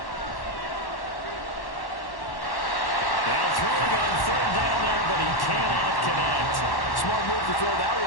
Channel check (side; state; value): right; late; 1.1 ms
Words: Smart move to throw that